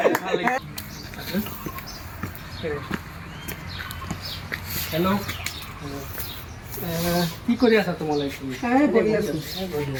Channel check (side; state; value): both; identical; correlation 1.00